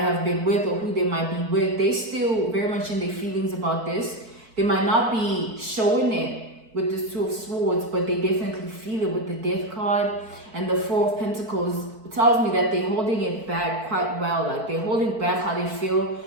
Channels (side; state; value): left; late; 4.5 ms